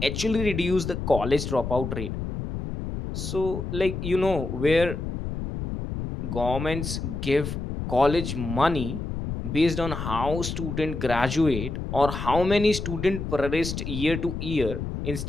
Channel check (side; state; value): left; noise; rumble, 5 dB below the sound